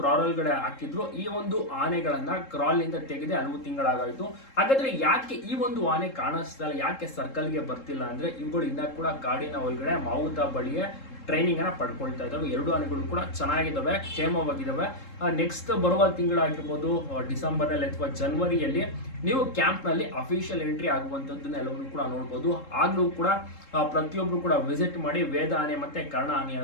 ಒಳಗಡೆ ಹಾಕಿದ್ರು. ಈ ಒಂದು ಆನೆಗಳನ್ನ ಕ್ರಾಲ್ ನಿಂದ ತೆಗೆದು ಹಲವು ತಿಂಗಳಾಗಾಯ್ತು. ಹಾಗಾದ್ರೆ ಯಾಕೆ ಈ ಒಂದು ಆನೆ ಕಾಣಿಸ್ತಾ ಇಲ್ಲ, ಯಾಕೆ ಸರ್ಕಲ್ಗೆ ಬರ್ತಿಲ್ಲ ಅಂದ್ರೆ ಇವುಗಳು ಇನ್ನ ಕೂಡ ಕಾಡಿನ ಒಳಗಡೆ ಮಾವುತ ಬಳಿಯೇ ಟ್ರೈನಿಂಗ್ ಅನ್ನ ಪಡ್ಕೊಳ್ತಾ ಇದ್ದಾವೆ. ಎರಡು ಆನೆಗಳು ಕೂಡ ಚೆನ್ನಾಗಿದ್ದಾವೆ, ಕ್ಷೇಮವಾಗಿದ್ದಾವೆ. ನೆಕ್ಸ್ಟ್ ಬರುವ ತಿಂಗಳಾಗಿರ್ಬೋದು, ಡಿಸೆಂಬರ್ನಲ್ಲಿ ಅಥವಾ ಜನವರಿಯಲ್ಲಿ ನೀವು ಕ್ಯಾಂಪ್ನಲ್ಲಿ ಅಫಿಷಿಯಲ್ ಎಂಟ್ರಿ ಆಗುವಂಥದ್ದನ್ನ ಎಲ್ಲವನ್ನೂ ಕೂಡ ನೋಡ್ಬೋದು. ಆಗ್ಲೂ ಕೂಡ ಪ್ರತಿಯೊಬ್ರು ಕೂಡ ವಿಸಿಟ್ ಮಾಡಿ ವೇದ ಆನೆ ಮತ್ತೆ ಕರ್ಣ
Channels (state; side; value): late; right; 3.7 ms